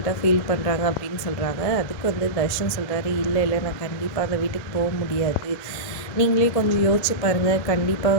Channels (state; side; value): late; right; 2.0 ms